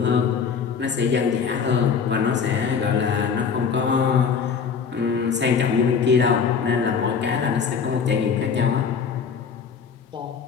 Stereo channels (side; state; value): right; quieter; 6.2 dB